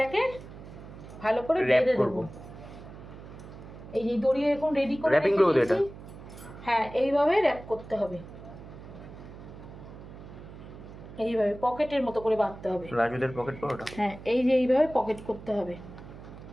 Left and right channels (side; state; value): right; noise; hum, 15 dB below the sound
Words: ভালো করে বেঁধে দেবো। এই যে দড়ি এরকম রেডি করে র‍্যাপিং করব এটা। হ্যাঁ, এইভাবে র‍্যাপ করতে হবে। এইভাবে পকেটের মতো করে বাঁধতে হবে। রাজুদের পকেট পরোটা। হ্যাঁ, এই যে এইভাবে পকেট করতে হবে।